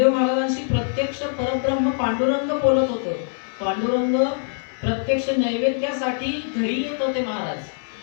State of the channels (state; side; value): silent; right; digital silence